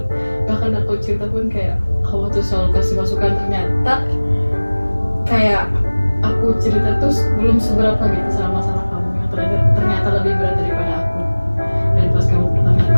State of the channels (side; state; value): both; inverted; correlation -1.00